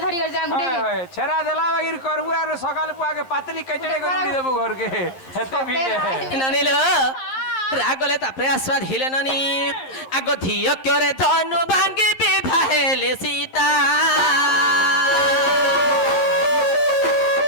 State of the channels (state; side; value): late; right; 11 ms